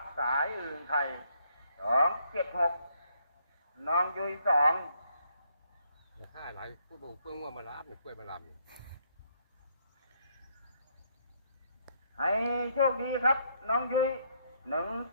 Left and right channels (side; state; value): both; inverted; correlation -0.71